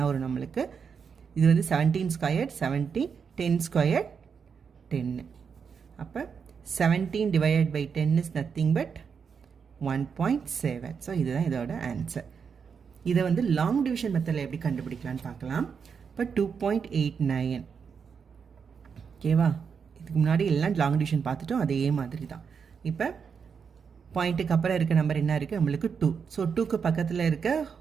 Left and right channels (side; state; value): left; quieter; 6.3 dB